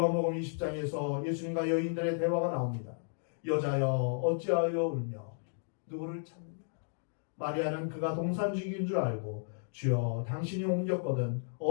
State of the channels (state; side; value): silent; right; digital silence